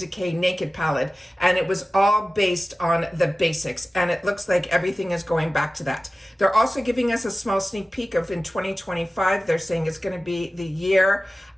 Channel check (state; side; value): normal; both; correlation 0.96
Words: Naked palette. And it was all based on the basics. And it looks like everything is going back to that. They're also giving us a small sneak peek of in 2025, they're saying it's going to be the year